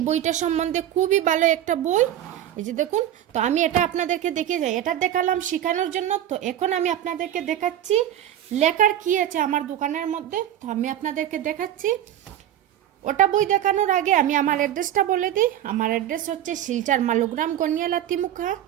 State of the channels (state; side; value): quieter; left; 11.5 dB